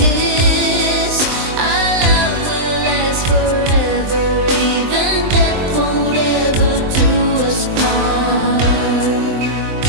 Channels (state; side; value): late; left; 23 ms